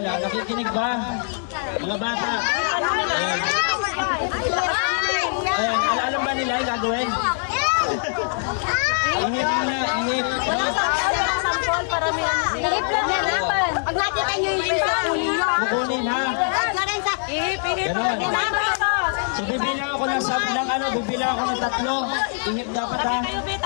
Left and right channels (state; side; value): silent; right; digital silence